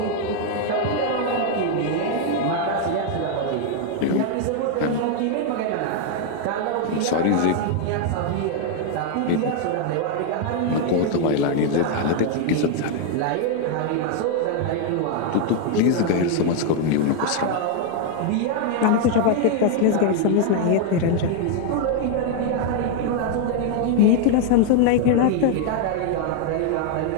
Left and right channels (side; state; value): both; different; correlation 0.00